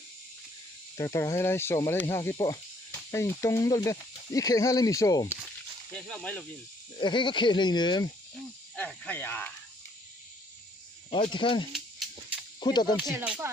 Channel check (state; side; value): normal; both; correlation 0.65